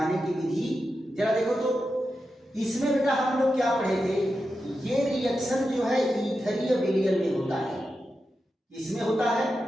की विधि। जरा देखो तो इसमें बेटा हम लोग क्या पढ़े थे, ये रिएक्शन जो है ईथरीय विलयन में होता है, इसमें होता है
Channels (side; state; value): both; normal; correlation 0.89